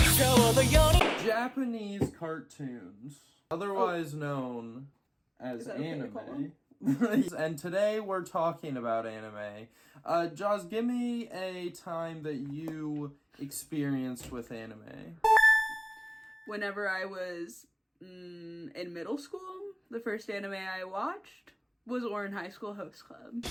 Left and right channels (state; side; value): identical; both; correlation 1.00